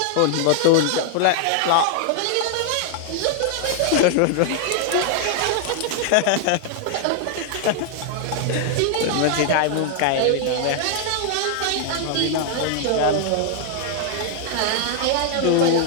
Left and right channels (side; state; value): both; different; correlation 0.00